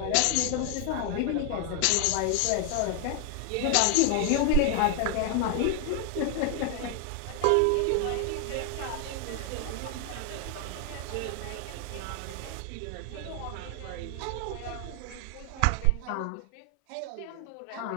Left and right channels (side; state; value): both; different; correlation 0.00